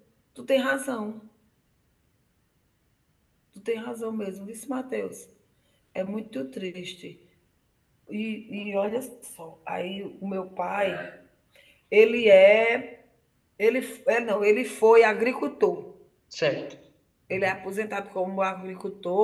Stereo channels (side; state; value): both; identical; correlation 1.00